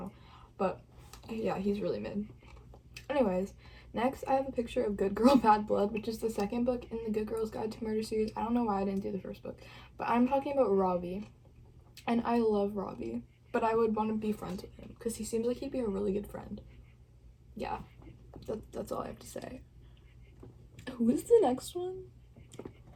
But yeah, he's really mid. Anyways, next I have a picture of Good Girl Bad Blood, which is the 2nd book in the Good Girl's Guide to Murder series. I don't know why I didn't do the 1st book, but I'm talking about Robbie. And I love Robbie, but I would want to be friends with him because he seems like he'd be a really good friend. Yeah, that's all I have to say. Who is the next one?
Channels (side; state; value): both; identical; correlation 1.00